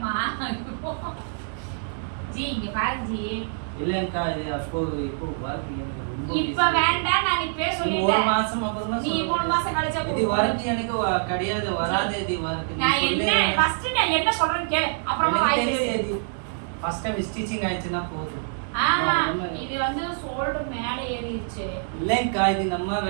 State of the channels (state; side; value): silent; left; digital silence